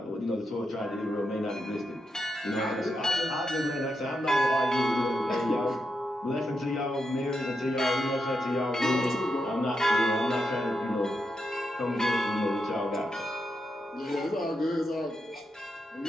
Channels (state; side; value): normal; both; correlation 0.85